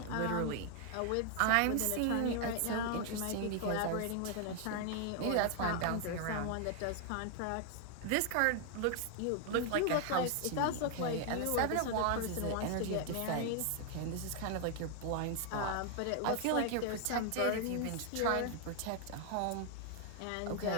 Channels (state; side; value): different; both; correlation 0.00